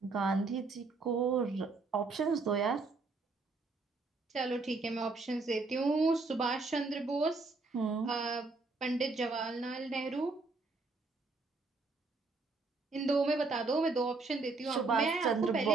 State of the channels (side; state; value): left; quieter; 3.8 dB